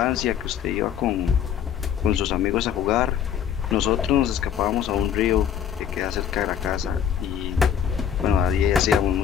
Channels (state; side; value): quieter; right; 8.9 dB